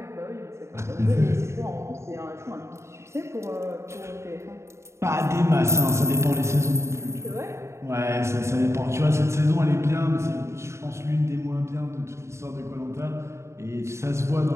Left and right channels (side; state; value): left; late; 0.13 ms